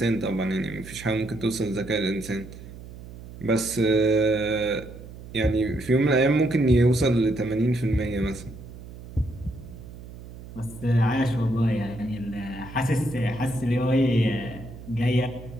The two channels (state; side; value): noise; right; hum, 15 dB below the sound